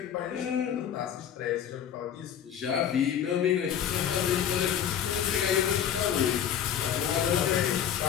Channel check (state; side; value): quieter; right; 9.3 dB